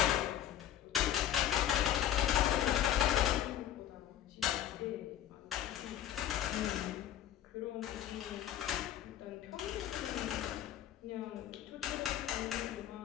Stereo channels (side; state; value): right; quieter; 11.2 dB